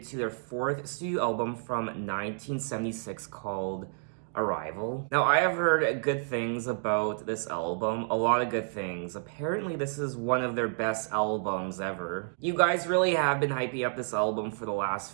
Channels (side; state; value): left; silent; digital silence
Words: to their fourth studio album from 1976 called Arrival. Now, I have heard good things about this album, a lot of good things. Apparently, this is one of their best albums ever. You guys really have been hyping up this album for the last